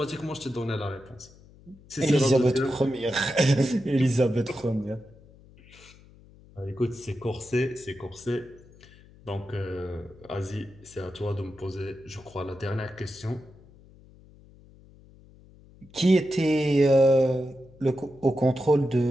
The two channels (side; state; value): left; noise; hum, 24 dB below the sound